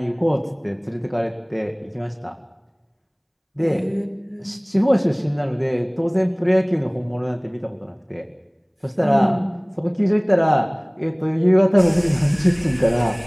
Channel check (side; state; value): both; identical; correlation 1.00